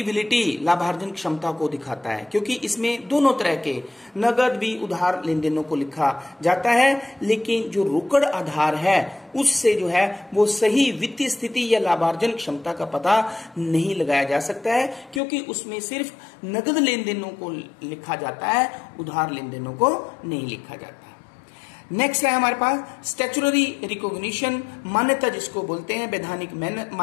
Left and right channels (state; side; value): drops out; right; at 15.2 s